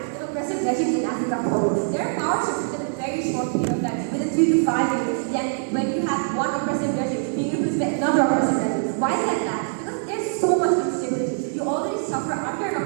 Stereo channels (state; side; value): silent; left; digital silence